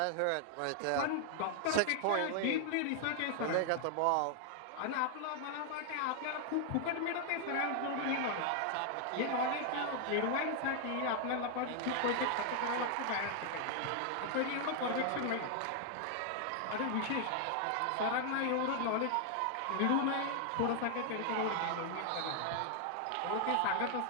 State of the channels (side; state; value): both; different; correlation 0.00